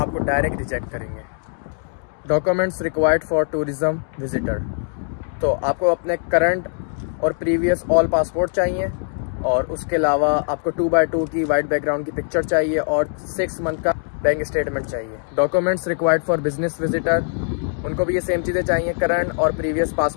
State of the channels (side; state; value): right; silent; digital silence